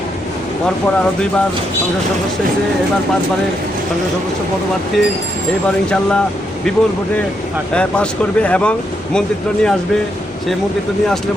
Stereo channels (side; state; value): both; normal; correlation 0.79